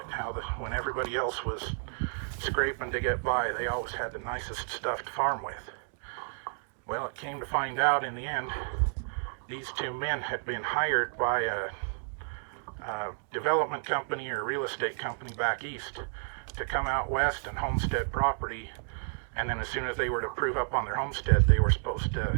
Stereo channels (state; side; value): silent; left; digital silence